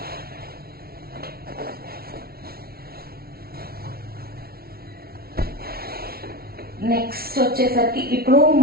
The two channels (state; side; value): late; left; 0.44 ms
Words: Next వచ్చేసరికి ఇప్పుడు